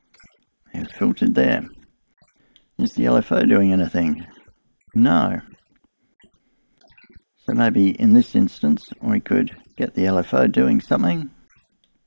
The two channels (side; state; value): both; inverted; correlation -1.00